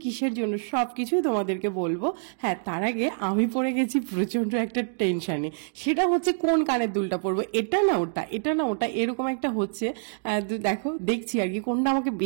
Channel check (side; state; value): left; silent; digital silence